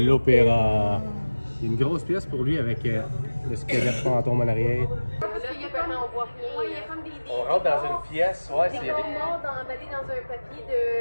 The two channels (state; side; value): inverted; both; correlation -1.00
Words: l'opéra. Il y a une grosse pièce pour lui avec le squelette fantôme en arrière. On rentre dans une pièce, ouais, c'est... Des corps morts emballés dans un papier